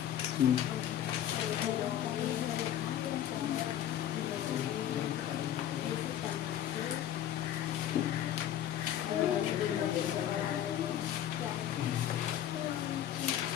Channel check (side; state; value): right; quieter; 11.2 dB